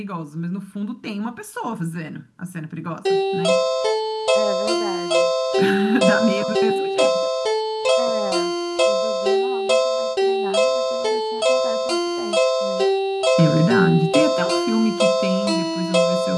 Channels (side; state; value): both; identical; correlation 1.00